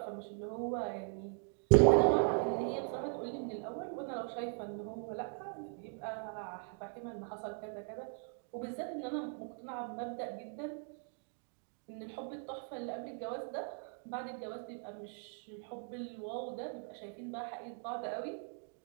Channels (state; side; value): silent; left; 52 dB below the other